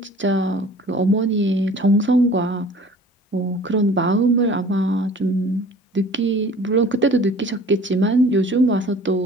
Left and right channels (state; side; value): normal; both; correlation 0.47